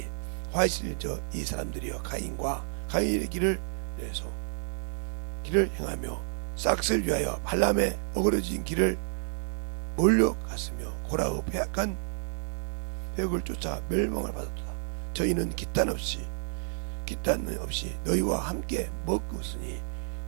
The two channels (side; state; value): left; silent; digital silence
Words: 화이실 이 사람들이여 가인의 길을 내서 길을 행하며 싹을 위하여 발람의 어그러진 길을 몰려갔으며 고라의 패악한 획을 쫓아 멸망을 받았도다. 저희는 기탄 없이 너희와 함께 먹었으니